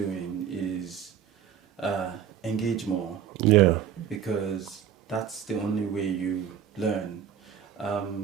is engage more, Yeah. because that's the only way you learn. I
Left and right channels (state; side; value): quieter; left; 8.9 dB